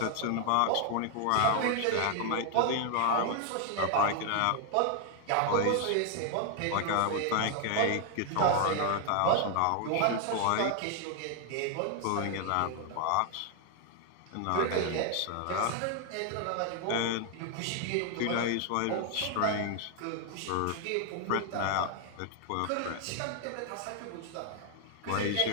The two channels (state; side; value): different; both; correlation 0.00